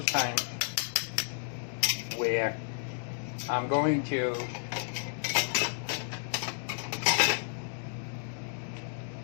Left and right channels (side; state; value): right; silent; digital silence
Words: times where I'm going to